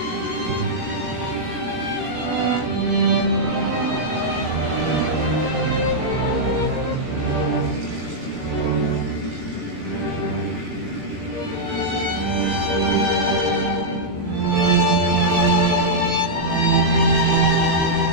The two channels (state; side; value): late; left; 18 ms